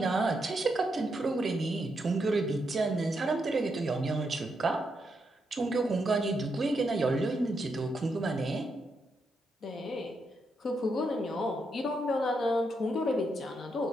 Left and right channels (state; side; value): normal; both; correlation 0.81